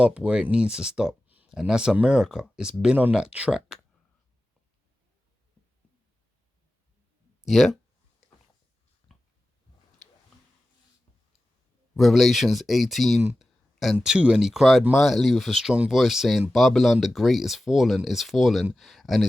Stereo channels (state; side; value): normal; both; correlation 0.94